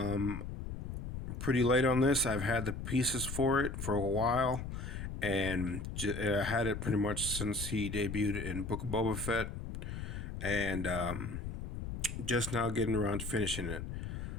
Pretty late on this. I've had the pieces for it for a while, and I had it pretty much since he debuted in Book of Boba Fett, and just now getting around to finishing it.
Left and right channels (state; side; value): noise; left; rumble, 6 dB below the sound